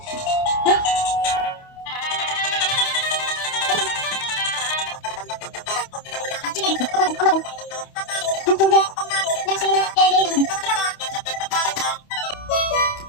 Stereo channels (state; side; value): late; right; 28 ms